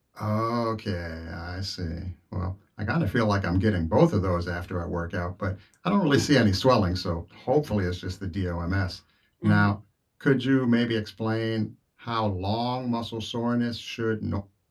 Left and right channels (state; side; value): identical; both; correlation 1.00